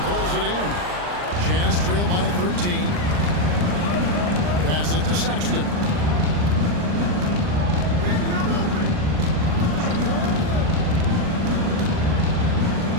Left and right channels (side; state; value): left; late; 39 ms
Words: pulls it in. Jazz trail by 13. Passes to Sexton.